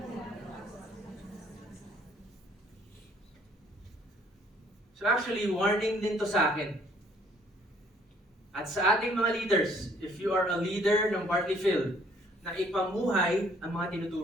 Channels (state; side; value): normal; both; correlation 0.62